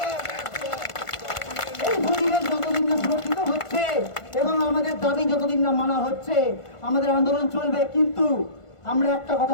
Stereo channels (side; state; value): right; late; 1.5 ms